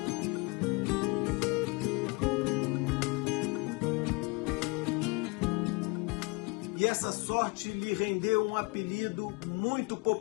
E essa sorte lhe rendeu um apelido muito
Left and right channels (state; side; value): quieter; right; 28.2 dB